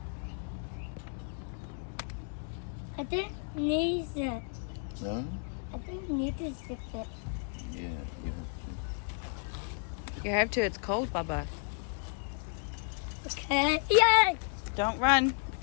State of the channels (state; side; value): silent; right; 55 dB below the other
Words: I didn't need it. No? I didn't need to zip it. Yeah, you have to. You have to, it's cold, Baba. Okay. Yay! Don't run,